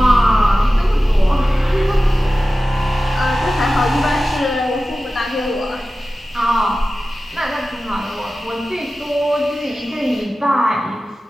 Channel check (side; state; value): both; normal; correlation 0.95